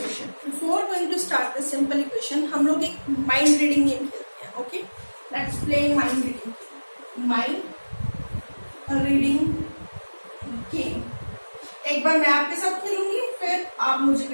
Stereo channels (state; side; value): inverted; both; correlation -1.00